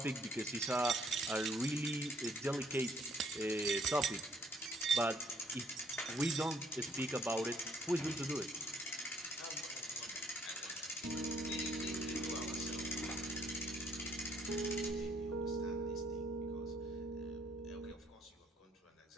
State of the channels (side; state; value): both; normal; correlation 0.66